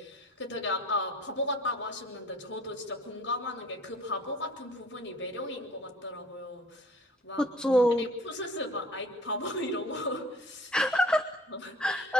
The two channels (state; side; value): normal; both; correlation 0.50